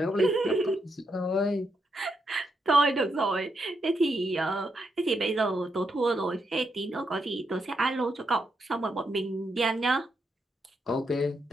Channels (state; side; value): normal; both; correlation 0.81